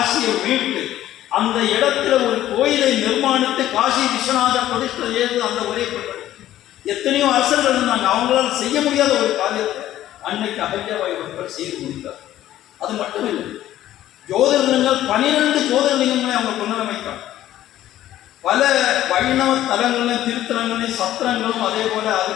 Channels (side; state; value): right; quieter; 13.2 dB